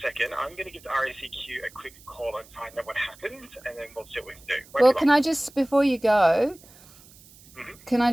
second. I'm going to give the RACQ a quick call and find out what happened, and then we'll see what we can do. Well, can I just, before you go, can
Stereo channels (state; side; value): noise; right; hiss, 24 dB below the sound